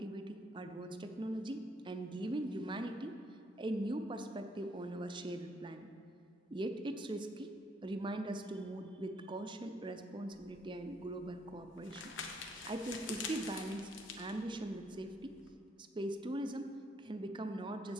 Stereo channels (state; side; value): normal; both; correlation 0.70